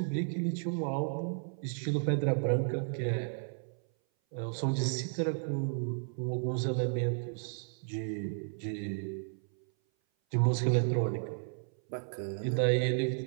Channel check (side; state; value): left; silent; 56 dB below the other